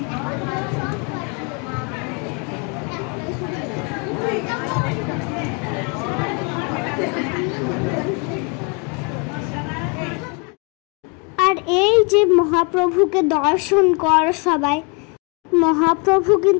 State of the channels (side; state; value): right; quieter; 32.9 dB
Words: আর এই যে মহাপ্রভুকে দর্শন কর সবাই, মহাপ্রভু